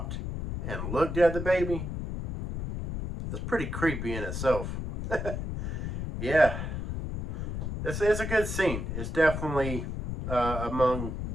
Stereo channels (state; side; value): noise; left; rumble, 4 dB below the sound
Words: and looked at the baby, it's pretty creepy in itself. Yeah, it's a good scene. It's definitely among